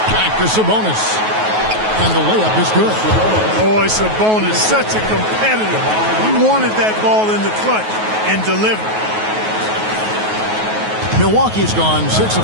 Back to Sabonis. And the layup is good. Boy, Sabonis, such a competitor. He wanted that ball in the clutch and delivered. Milwaukee's gone 6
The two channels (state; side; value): late; left; 9.3 ms